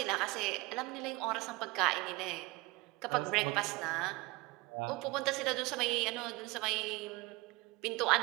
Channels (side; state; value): left; quieter; 22.7 dB